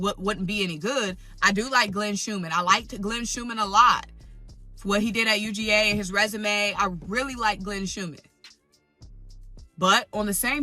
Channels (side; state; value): both; identical; correlation 1.00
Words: wouldn't be any good. I do like Glenn Schumann. I liked Glenn Schumann a lot. For what he did at UGA and his resume, I really like Glenn Schumann. But on the